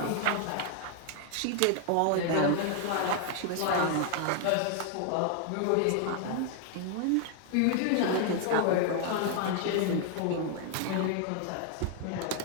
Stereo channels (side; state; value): both; different; correlation 0.00